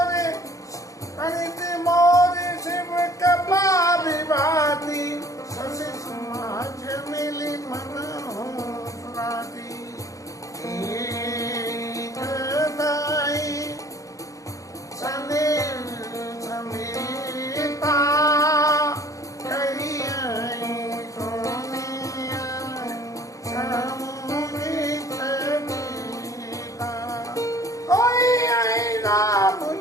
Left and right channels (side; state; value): right; late; 0.16 ms